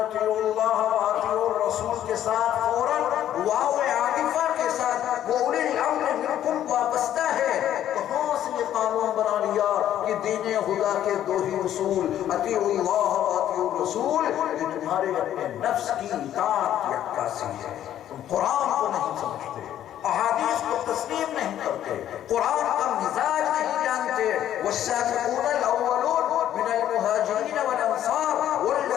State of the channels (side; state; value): right; quieter; 11.4 dB